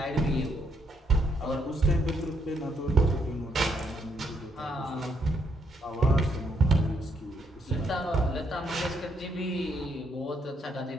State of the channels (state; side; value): normal; both; correlation 0.74